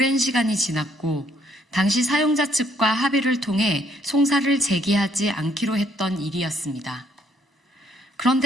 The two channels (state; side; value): normal; both; correlation 0.68